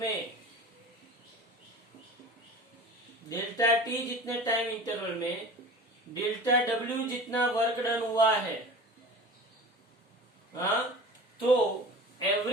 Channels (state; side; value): normal; both; correlation 0.38